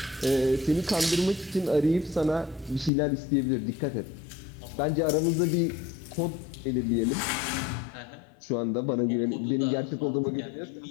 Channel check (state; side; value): drops out; right; at 2.9 s